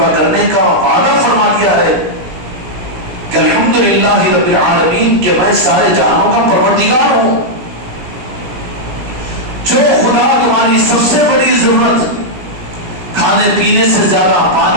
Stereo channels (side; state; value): left; late; 17 ms